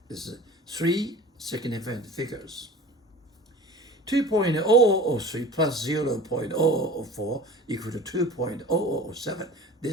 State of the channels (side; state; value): both; normal; correlation 0.39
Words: This is 3 significant figures. 2.0003 plus 0.0004 equal to 2.0007.